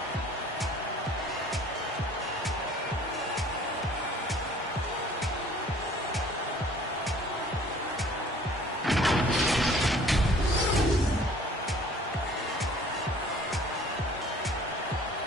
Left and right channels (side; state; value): both; normal; correlation 0.52